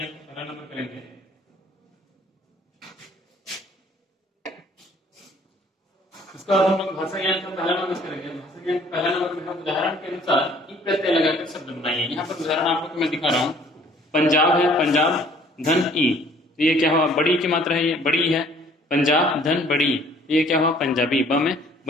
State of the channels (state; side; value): normal; both; correlation 0.57